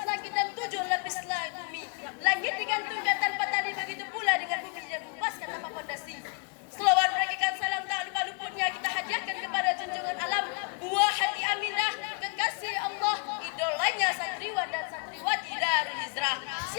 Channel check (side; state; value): right; quieter; 35.5 dB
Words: langit dan 7 lapis bumi. Langit digantungkan tanpa tali, begitu pula dengan bumi yang dikepaskan tanpa fondasi. Selawat berikan salam tak lupa luputnya kita hadiahkan kepada junjungan alam, buah hati Aminah, kekasih Allah, idolanya santriwan dan santriwati Darul Hijrah.